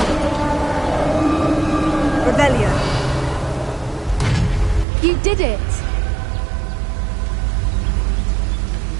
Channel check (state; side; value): drops out; left; at 4.9 s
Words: Revelio. You did it!